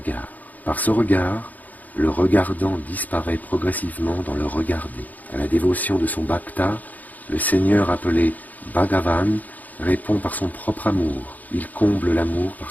Par ce regard, le regardant disparaît progressivement dans le regarder. À la dévotion de son bhakta, le Seigneur appelé Bhagavan répond par son propre amour. Il comble l'amour par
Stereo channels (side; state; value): right; late; 0.080 ms